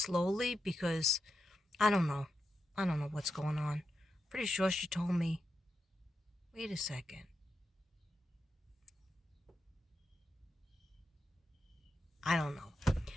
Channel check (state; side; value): normal; both; correlation 0.88